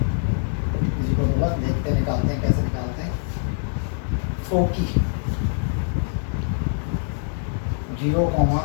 इसी को देखते निकालते हैं कैसे निकालते हैं। फोकी 0,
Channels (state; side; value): silent; right; digital silence